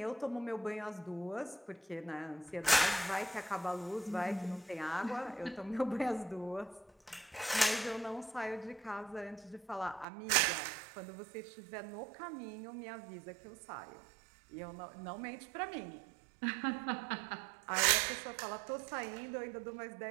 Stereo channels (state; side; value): drops out; left; at 10.1 s